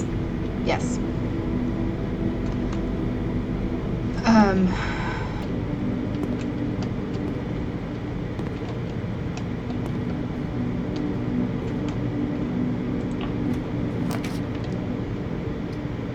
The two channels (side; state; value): both; identical; correlation 1.00